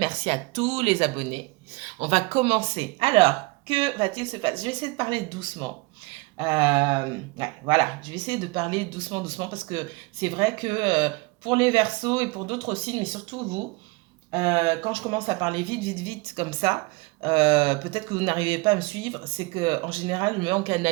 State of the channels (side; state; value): left; quieter; 25.1 dB